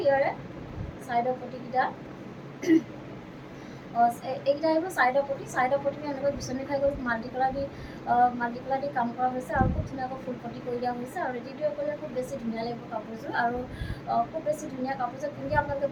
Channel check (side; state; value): both; identical; correlation 1.00